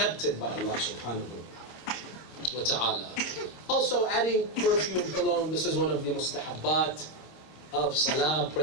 by Allah subhanahu wa ta'ala. Also adding perfume, cologne, this is one of the mustahabbat of salah,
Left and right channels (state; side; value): late; right; 26 ms